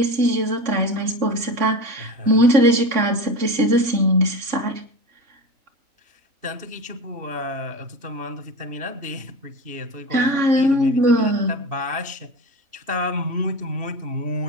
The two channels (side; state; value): left; late; 3.5 ms